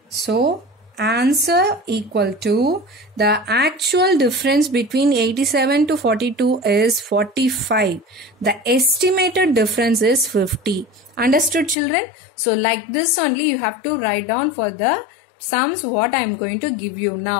So, answer equal to the actual difference between 87 to 42 is 45. The estimated difference is 50. Understood, children? So, like this only you have to write down for the sums what I am going to give you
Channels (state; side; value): drops out; right; at 11.8 s